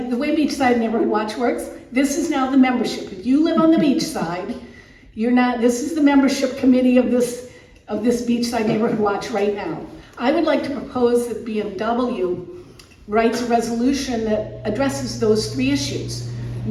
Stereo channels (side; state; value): both; identical; correlation 1.00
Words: the way Beachside Neighborhood Watch works, this is now the membership. If you live on the beach side, this is the membership committee of this Beachside Neighborhood Watch right now. I would like to propose that BNW writes a resolution that addresses those 3 issues.